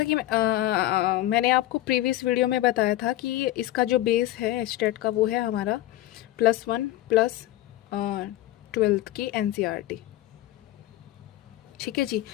आपको प्रीवियस वीडियो में बताया था कि इसका जो बेस है एचटेट का वो है हमारा +1 प्लस 12th की एनसीईआरटी। ठीक है जी,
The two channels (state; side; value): quieter; right; 15.1 dB